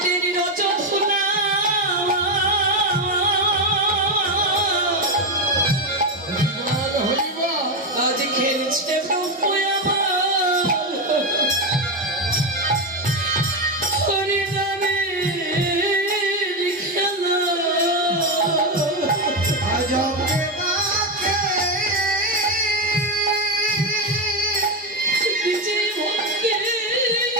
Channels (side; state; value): both; normal; correlation 0.09